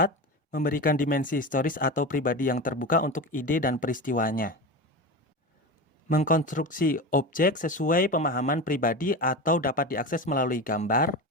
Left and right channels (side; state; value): both; normal; correlation 0.25